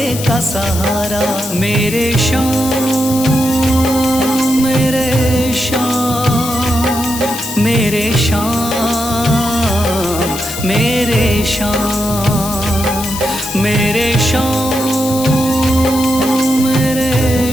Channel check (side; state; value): left; noise; hiss, 9 dB below the sound